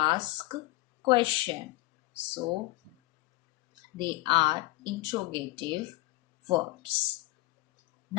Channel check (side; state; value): right; quieter; 20.9 dB